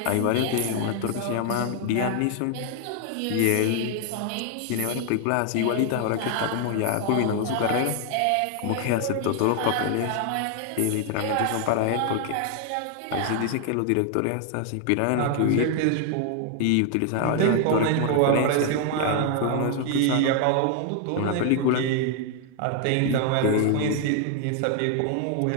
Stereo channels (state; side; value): different; both; correlation 0.00